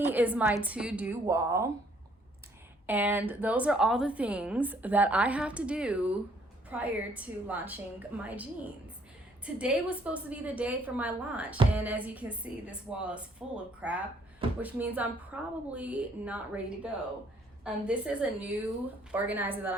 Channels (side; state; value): both; normal; correlation 0.64